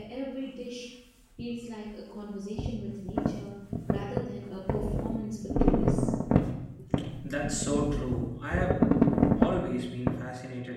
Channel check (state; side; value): identical; both; correlation 1.00